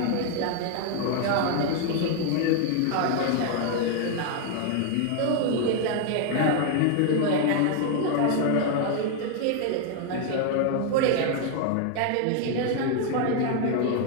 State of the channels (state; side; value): different; both; correlation 0.00